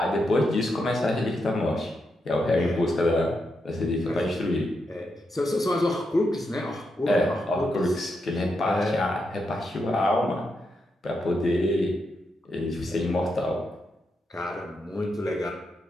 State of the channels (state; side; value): normal; both; correlation 0.84